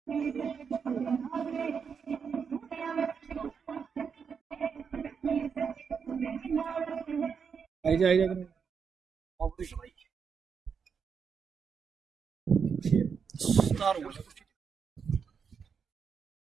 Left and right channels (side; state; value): left; quieter; 6.3 dB